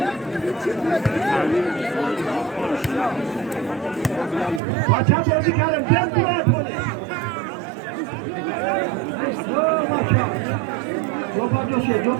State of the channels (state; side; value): drops out; left; at 4.6 s